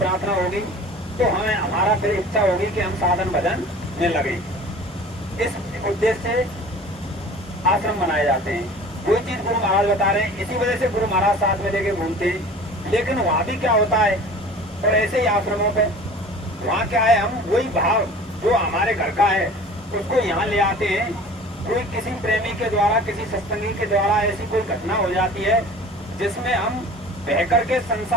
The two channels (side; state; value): both; normal; correlation 0.43